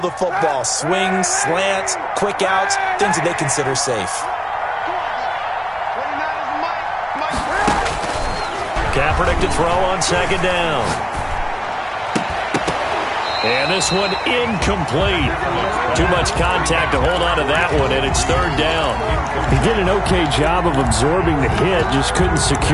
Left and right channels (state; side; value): identical; both; correlation 1.00